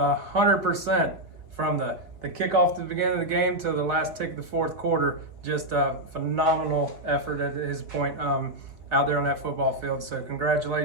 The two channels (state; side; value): late; left; 4.0 ms